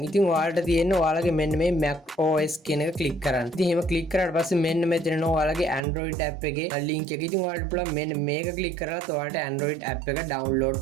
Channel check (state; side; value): drops out; left; at 5.8 s